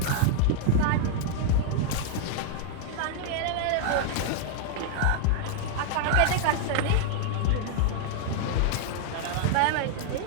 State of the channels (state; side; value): different; both; correlation -0.01